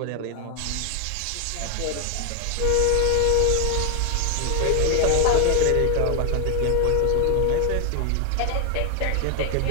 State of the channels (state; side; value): different; both; correlation 0.01